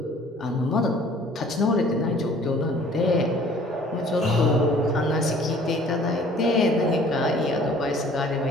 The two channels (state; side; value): normal; both; correlation 0.53